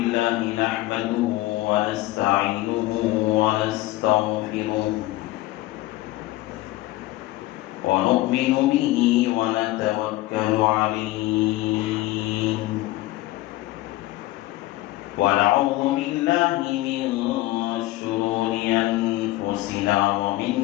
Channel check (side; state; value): right; quieter; 17.7 dB